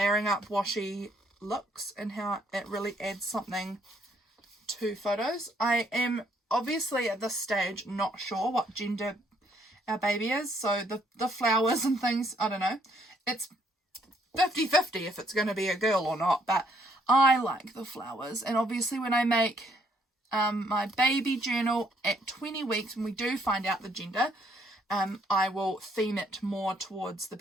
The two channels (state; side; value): normal; both; correlation 0.68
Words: up washi looks and how it really adds something to photos. I am obviously at this stage not sure what gender our baby is, so the flowers and things, I don't know. It's 50-50 if it's going to be a girl or not, but I like the flowers. And obviously when I make my baby journal at 20 weeks, when we do find out the gender, I will theme it more towards the